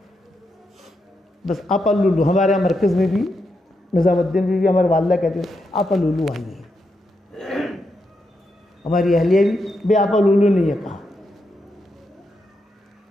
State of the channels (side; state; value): both; normal; correlation 0.83